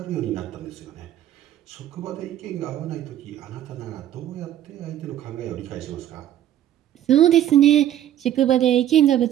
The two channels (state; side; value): quieter; left; 11.7 dB